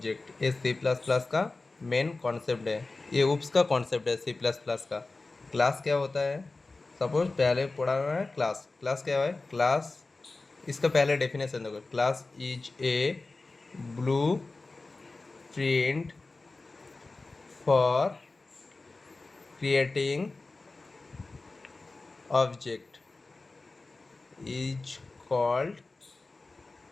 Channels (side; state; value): right; quieter; 3.5 dB